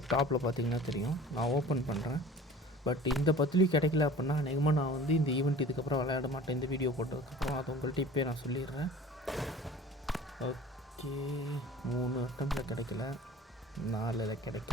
டாப்பில் பார்த்தீங்கன்னா தெரியும். நான் ஓப்பன் பண்ணுறேன். பட் இந்த 10லையும் கிடைக்கல அப்படின்னா அநேகமாக நான் வந்து இந்த ஈவெண்ட் இதுக்கப்புறம் விளையாட மாட்டேன். இந்த வீடியோ போட்டதுக்கப்புறம் அதை உங்கள்கிட்ட இப்போயே நான் சொல்லிடுறேன். ஓகே, 3 அட்டம்ப்டில் கிடைக்கல, 4ல்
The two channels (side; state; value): both; normal; correlation 0.43